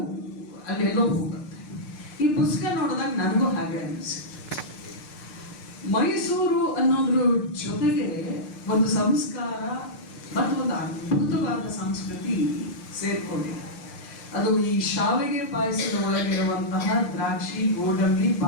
ಅಲ್ಲೆಲ್ಲೋ ಹೋಗುತ್ತೆ. ಈ ಪುಸ್ತಕ ನೋಡಿದಾಗ ನನಗೂ ಹಾಗೆ ಅನಿಸಿತ್ತು. ಮೈಸೂರು ಅನ್ನೋದ್ರ ಜೊತೆಗೆ ಒಂದು ಸಂಸ್ಕಾರ ಮತ್ತು ಒಂದು ಅದ್ಭುತವಾದ ಸಂಸ್ಕೃತಿ ಸೇರ್ಕೊಂಡಿದೆ. ಅದು ಈ ಶಾವಿಗೆ ಪಾಯಸದ ಒಳಗಿರುವಂತಹ ದ್ರಾಕ್ಷಿ, ಗೋಡಂಬಿ,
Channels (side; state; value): right; late; 6.7 ms